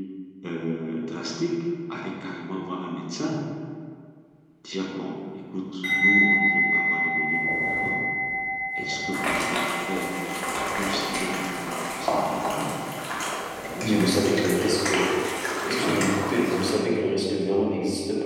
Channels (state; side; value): identical; both; correlation 1.00